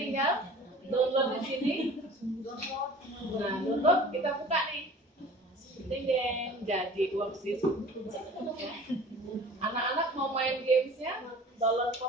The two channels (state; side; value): normal; both; correlation 0.44